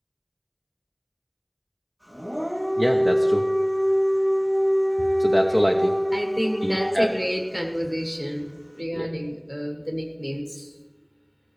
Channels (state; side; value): identical; both; correlation 1.00